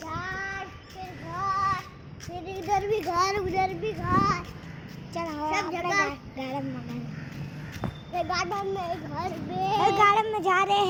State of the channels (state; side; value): identical; both; correlation 1.00